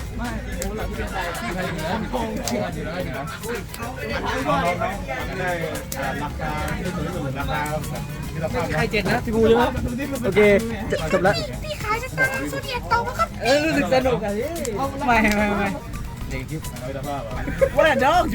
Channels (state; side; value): identical; both; correlation 1.00